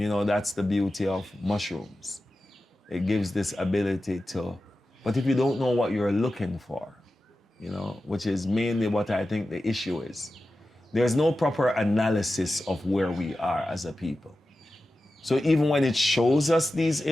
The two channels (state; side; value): normal; both; correlation 0.93